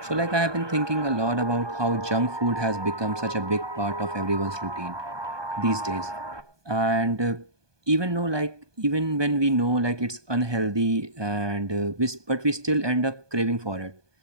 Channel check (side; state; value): left; late; 1.2 ms